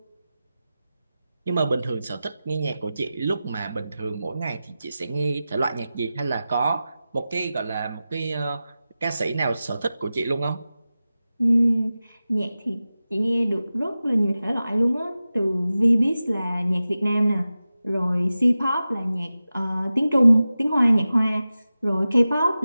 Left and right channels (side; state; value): both; inverted; correlation -0.94